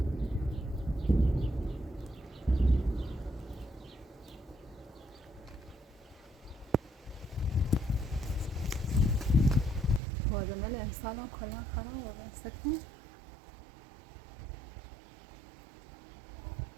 بادمل امسال هم کلا خراب است کن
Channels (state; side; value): drops out; left; at 10.0 s